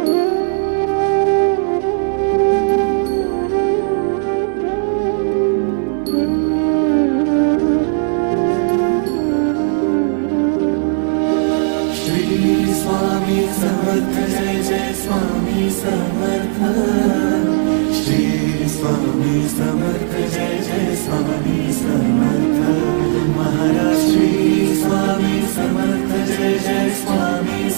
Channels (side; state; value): left; silent; 66 dB below the other